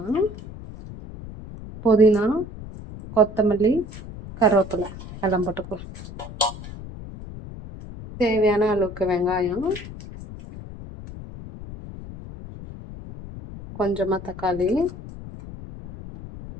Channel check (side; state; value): left; noise; rumble, 13 dB below the sound